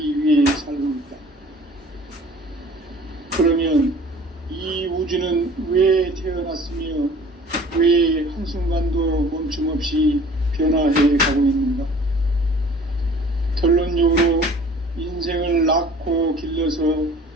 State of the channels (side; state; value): both; normal; correlation 0.48